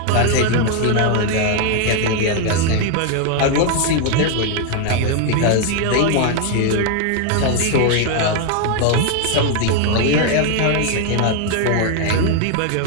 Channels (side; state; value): both; different; correlation 0.00